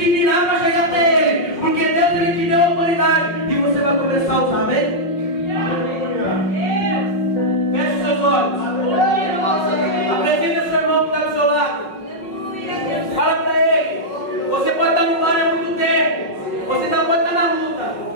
virar para chegar até ele, porque Deus ele te deu a autoridade, e você vai começar a usar, amém? Feche seus olhos. Apresenta seu irmão que está do seu lado. Fala para ele. Você pode estar no bar há muito tempo, você não pode estar na luta,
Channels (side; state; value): right; late; 5.5 ms